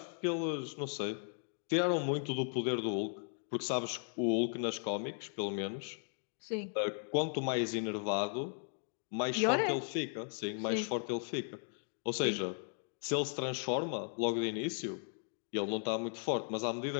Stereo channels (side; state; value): right; silent; 53 dB below the other